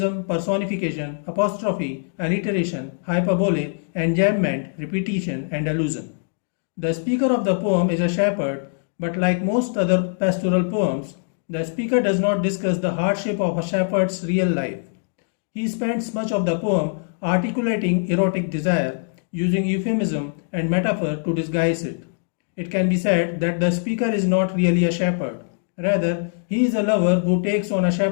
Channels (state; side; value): silent; right; digital silence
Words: personification, apostrophe, alliteration, hyperbole, enjambment, repetition, and allusion. The speaker of the poem is a shepherd, but like most other pastoral poems, the speaker does not discuss the hardship of a shepherd's real life. He spends much of the poem articulating erotic desire, using euphemism and metaphor to disguise it. It can be said that the speaker is not really a shepherd. Rather, he is a lover who takes on a